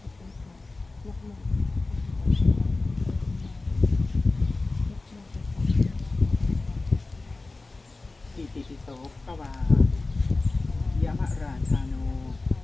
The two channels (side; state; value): right; quieter; 3.4 dB